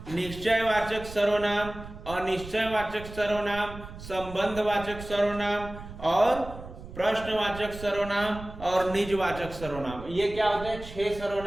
निश्चयवाचक सर्वनाम, अनिश्चयवाचक सर्वनाम, संबंधवाचक सर्वनाम और प्रश्नवाचक सर्वनाम और निजवाचक सर्वनाम। ये क्या होते हैं? 6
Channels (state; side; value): noise; right; rumble, 13 dB below the sound